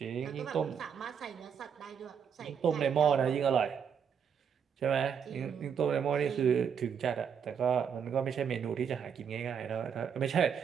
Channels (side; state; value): left; quieter; 7.4 dB